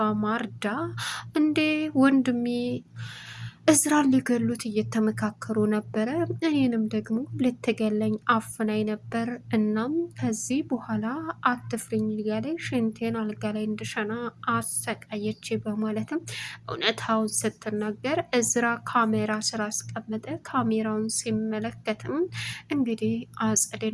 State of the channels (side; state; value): both; identical; correlation 1.00